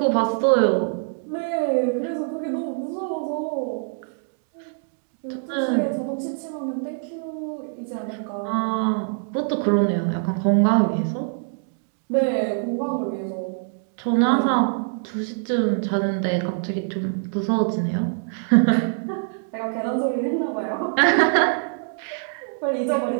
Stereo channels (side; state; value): left; silent; digital silence